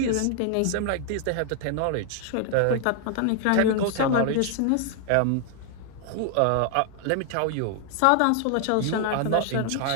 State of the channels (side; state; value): both; different; correlation 0.00